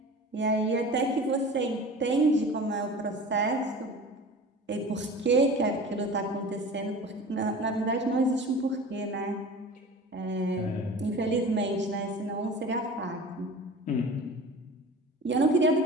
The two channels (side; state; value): both; normal; correlation 0.38